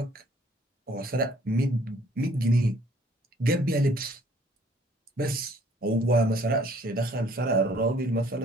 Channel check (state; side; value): normal; both; correlation 0.59